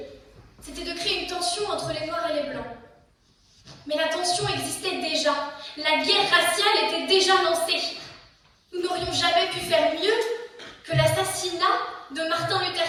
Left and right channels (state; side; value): identical; both; correlation 1.00